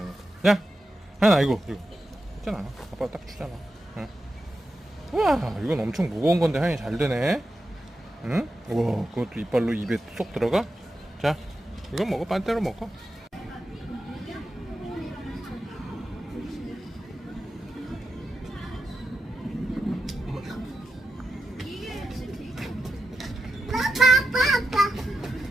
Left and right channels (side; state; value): both; normal; correlation 0.89